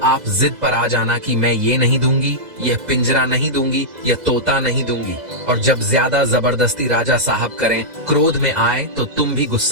आप जिद पर आ जाना कि मैं ये नहीं दूंगी, यह पिंजरा नहीं दूंगी, यह तोता नहीं दूंगी। और जब ज्यादा जबरदस्ती राजा साहब करें, क्रोध में आए तो तुम भी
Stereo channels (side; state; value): left; late; 2.0 ms